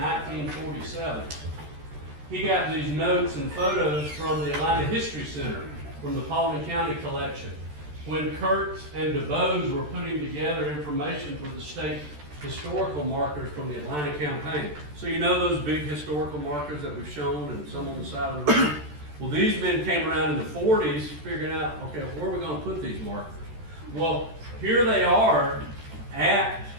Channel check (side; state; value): left; late; 13 ms